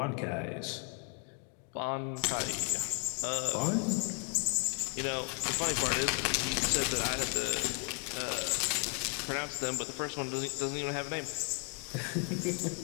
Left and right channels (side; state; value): right; quieter; 36.7 dB